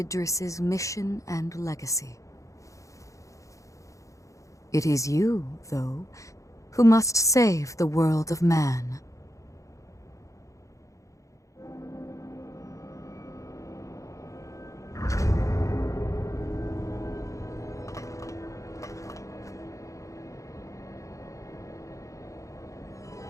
mission and legacy. It is you, though, who must save the world of man.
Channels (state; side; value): late; right; 0.15 ms